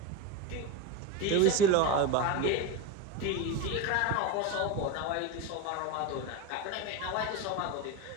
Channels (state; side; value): different; both; correlation 0.06